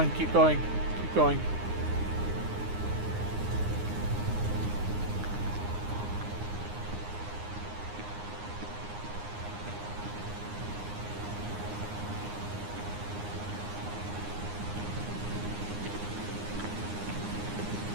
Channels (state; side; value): late; left; 9.7 ms